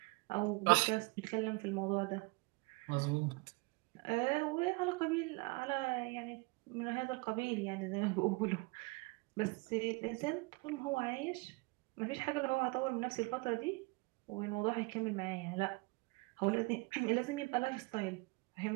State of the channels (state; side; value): quieter; left; 27.2 dB